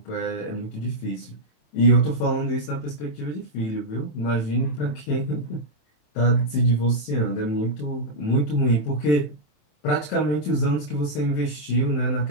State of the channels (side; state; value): right; late; 27 ms